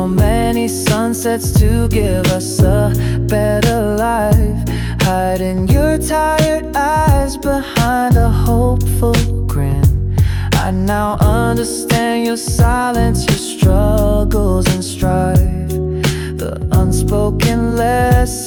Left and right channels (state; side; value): identical; both; correlation 1.00